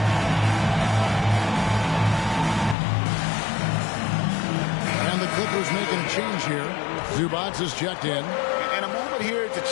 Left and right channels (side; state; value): right; drops out; at 2.8 s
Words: Clippers making a change here. Zubats is checked in. And a moment here to